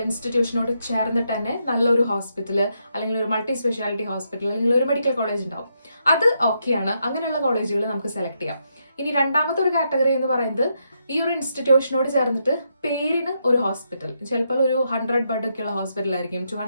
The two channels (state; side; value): inverted; both; correlation -0.80